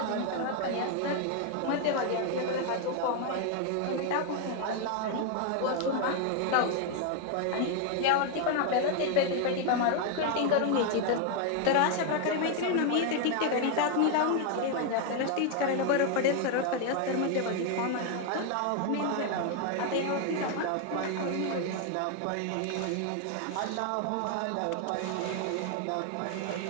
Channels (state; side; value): different; both; correlation 0.01